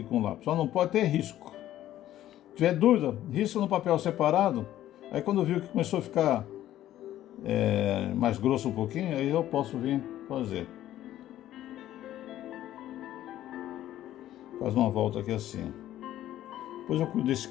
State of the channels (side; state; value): right; quieter; 13.1 dB